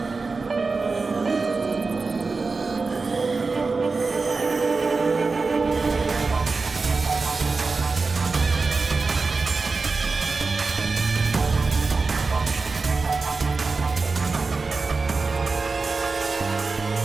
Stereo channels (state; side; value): quieter; left; 4.1 dB